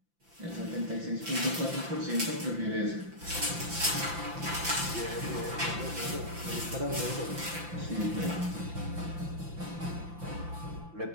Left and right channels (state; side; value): late; left; 5.8 ms